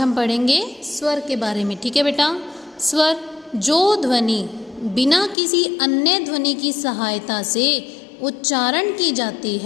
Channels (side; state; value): right; drops out; at 5.4 s